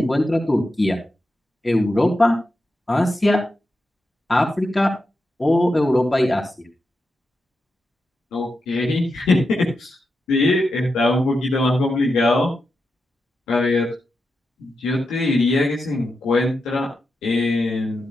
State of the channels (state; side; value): normal; both; correlation 0.88